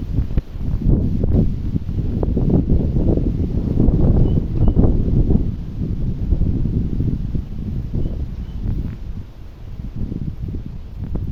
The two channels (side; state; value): both; identical; correlation 1.00